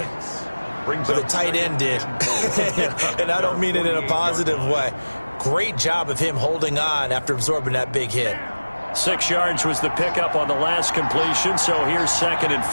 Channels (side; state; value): both; inverted; correlation -1.00